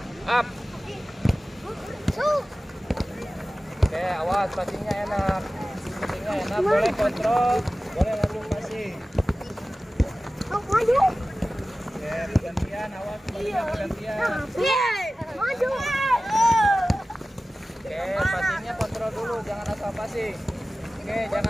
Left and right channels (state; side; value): normal; both; correlation 0.96